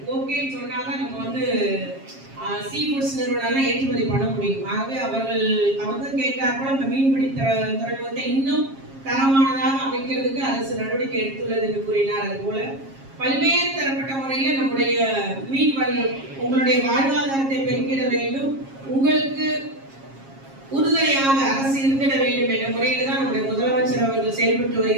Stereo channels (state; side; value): late; left; 7.4 ms